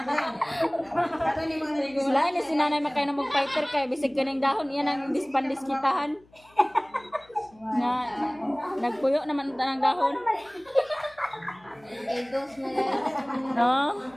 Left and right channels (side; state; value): left; noise; hum, 30 dB below the sound